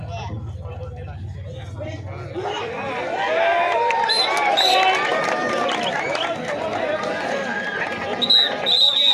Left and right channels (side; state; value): both; identical; correlation 1.00